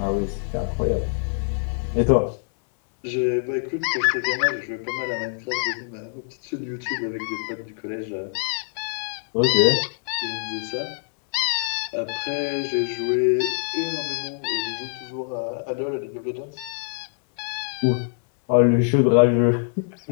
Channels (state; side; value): silent; right; 62 dB below the other